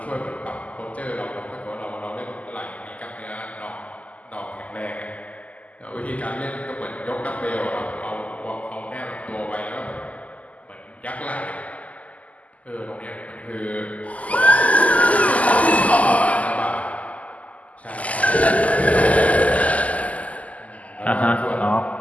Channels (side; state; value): right; late; 0.072 ms